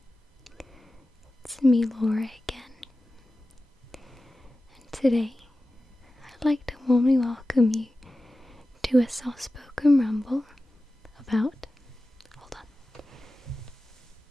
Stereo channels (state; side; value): normal; both; correlation 0.95